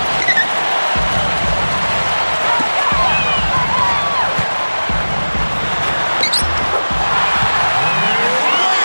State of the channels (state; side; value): inverted; both; correlation -1.00